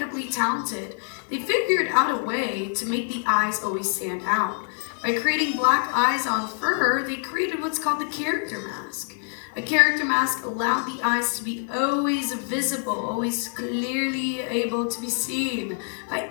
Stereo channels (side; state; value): right; silent; 57 dB below the other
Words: talented. They figured out a way to make the eyes always stand out. By creating black eyes on fur, they created what's called the character mask. A character mask allowed the eyes to be always visible, always clearly able to be seen by